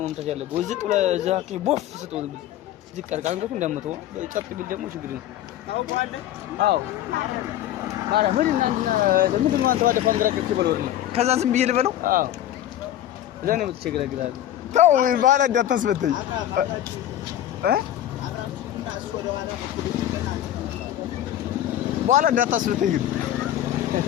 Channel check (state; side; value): quieter; right; 12.1 dB